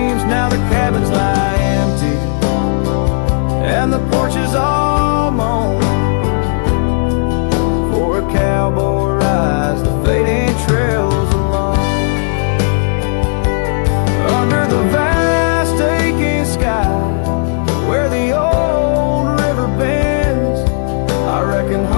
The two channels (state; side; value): silent; right; digital silence